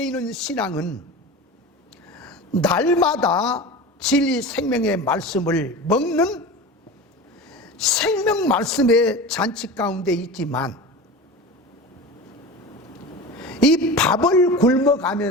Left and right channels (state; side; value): normal; both; correlation 0.31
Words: 있는 신앙은 날마다 진리 생명의 말씀을 먹는 생명 말씀의 잔치 가운데 있지만, 이 밥을